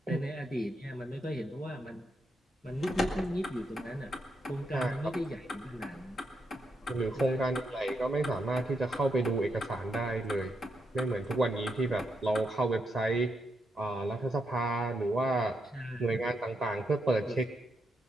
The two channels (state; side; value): normal; both; correlation 0.81